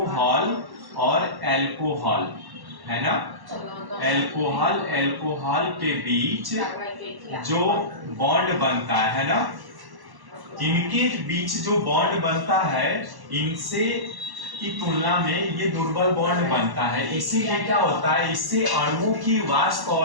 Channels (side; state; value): left; late; 1.1 ms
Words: और एल्कोहल है ना, एल्कोहल के बीच जो बॉन्ड बनता है ना, इनके बीच जो बॉन्ड बनता है इनसे की तुलना में ये दुर्बल बॉन्ड बनता है। इसीलिए क्या होता है, इससे अणुओं की वाष्प